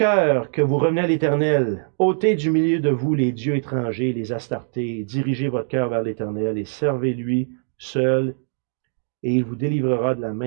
que vous revenez à l'Éternel, ôtez du milieu de vous les dieux étrangers, les astartés, dirigez votre cœur vers l'Éternel et servez-lui seul, et il vous délivrera de la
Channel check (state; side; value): silent; left; digital silence